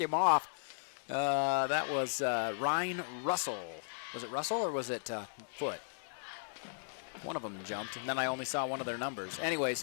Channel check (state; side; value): silent; right; digital silence